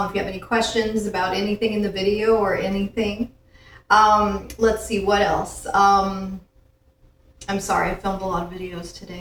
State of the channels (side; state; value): both; identical; correlation 1.00